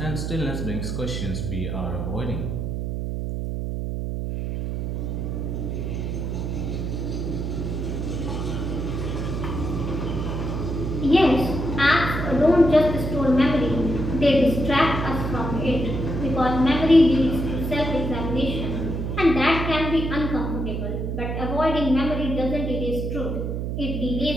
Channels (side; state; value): right; noise; hum, 3 dB below the sound